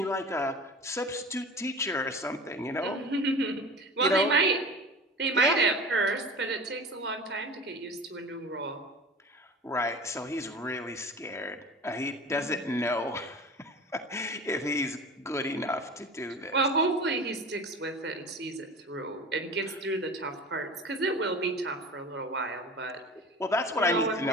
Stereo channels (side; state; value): both; normal; correlation 0.36